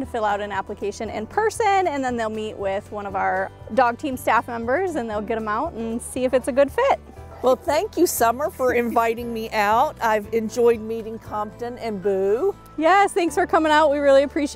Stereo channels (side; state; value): both; identical; correlation 1.00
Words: fill out an application in person, and then they'll meet with one of our dog team staff members, and they'll get them out and see if it's a good fit. Well, thank you, Summer, for inviting me out. I've enjoyed meeting Compton and Boo. Yes, thanks for coming out. We really